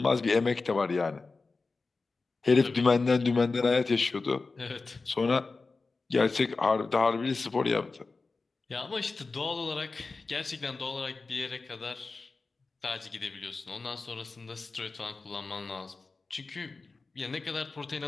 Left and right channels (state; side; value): quieter; right; 3.9 dB